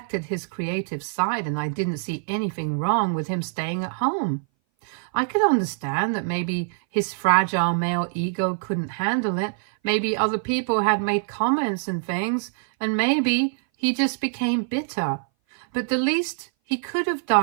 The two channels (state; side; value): silent; left; 59 dB below the other